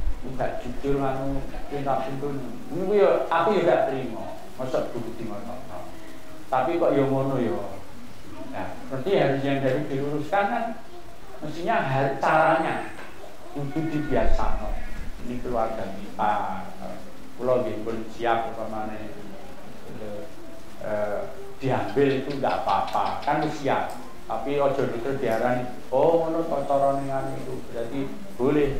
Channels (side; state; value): both; identical; correlation 1.00